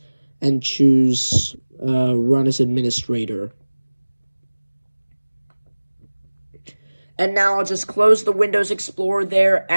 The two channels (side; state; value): both; inverted; correlation -1.00